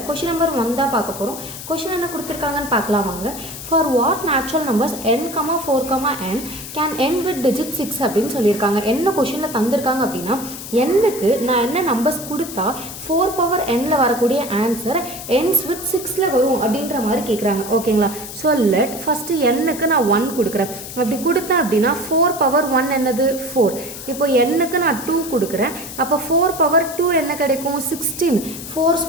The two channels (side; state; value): left; noise; hiss, 11 dB below the sound